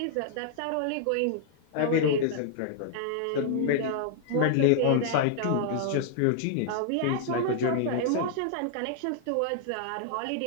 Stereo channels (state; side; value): different; both; correlation -0.01